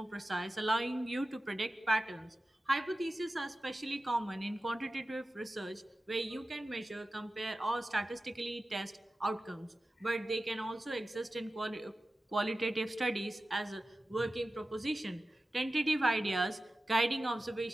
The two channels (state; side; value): normal; both; correlation 0.95